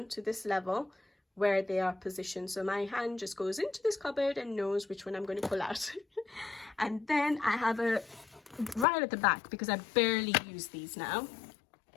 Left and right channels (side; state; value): right; drops out; at 8.8 s